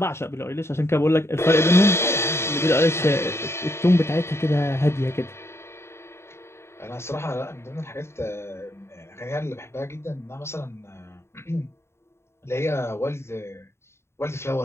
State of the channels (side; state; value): right; late; 0.13 ms